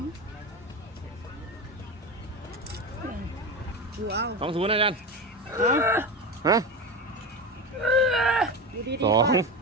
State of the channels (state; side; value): normal; both; correlation 0.21